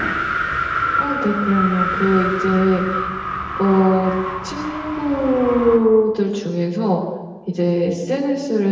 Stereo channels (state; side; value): identical; both; correlation 1.00